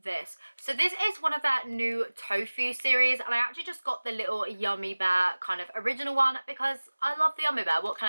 So this is one of their new tofu series and I actually just got the little Yummy Bear kind of original one because I love the Yummy Bear, what can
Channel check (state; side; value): inverted; both; correlation -1.00